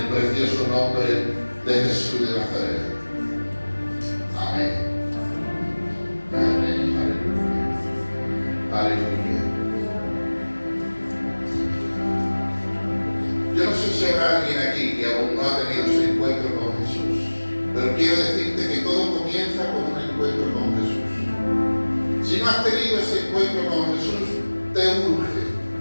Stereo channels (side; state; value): both; inverted; correlation -1.00